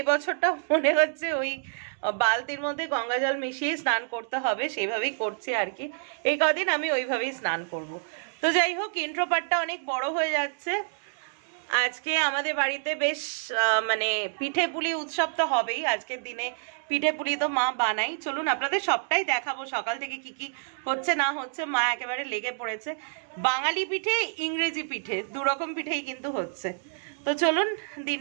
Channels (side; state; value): left; silent; digital silence